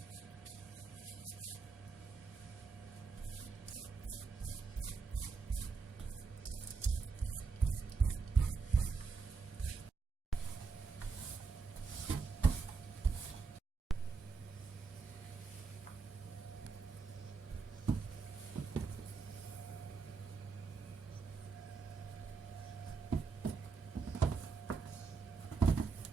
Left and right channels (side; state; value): left; quieter; 4.7 dB